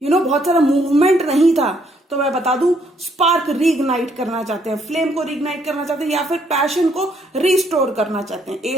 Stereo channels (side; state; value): both; normal; correlation 0.69